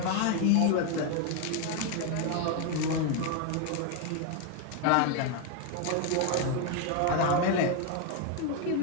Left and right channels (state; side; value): different; both; correlation 0.01